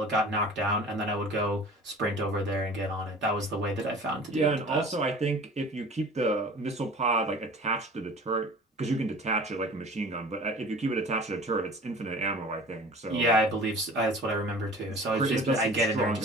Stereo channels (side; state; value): both; normal; correlation 0.43